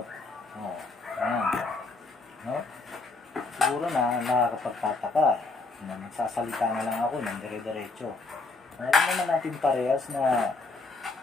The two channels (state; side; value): quieter; right; 3.6 dB